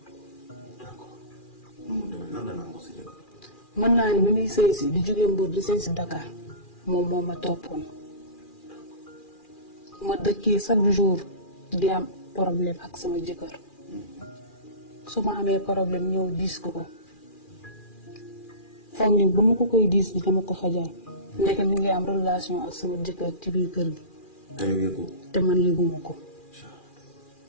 d'accord nu mu demee nan la nangu sa jëkkër. mën naa ni bi muy sëy si di jóge Mbour di sëy si Dakar moom moo ma toppoon. ma dëkkee chaque jour di am problème ak sama jëkkër. su ma amee problème ñëw diis ko ko. foog ni ba ma ko koy diis bi dama ko fajal. ndeke mi ngi am relation ak sama jëkkër ci biir kër gi. te yow yëgoo. te man yëguma ko.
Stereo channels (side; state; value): right; late; 2.4 ms